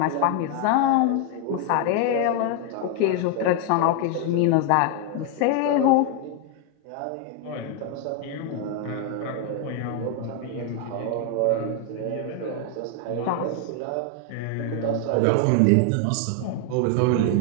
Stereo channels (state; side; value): different; both; correlation 0.00